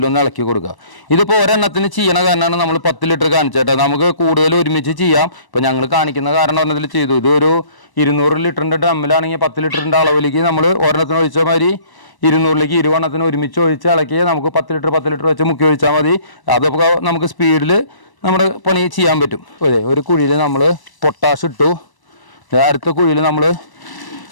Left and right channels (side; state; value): right; late; 1.0 ms